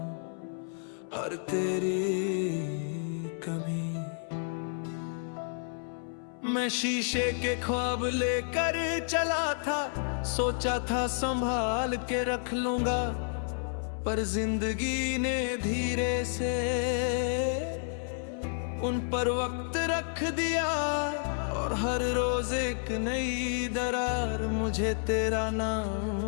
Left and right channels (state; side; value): silent; right; 57 dB below the other